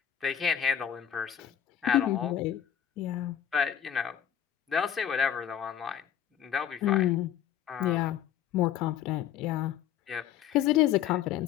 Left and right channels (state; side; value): quieter; right; 9.8 dB